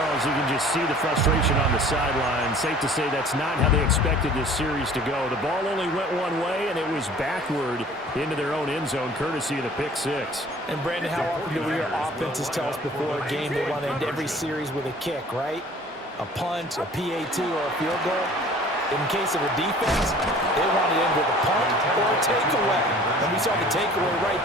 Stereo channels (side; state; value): both; normal; correlation 0.49